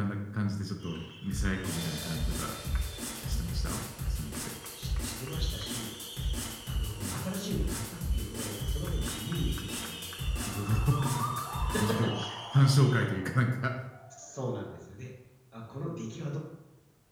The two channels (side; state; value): both; identical; correlation 1.00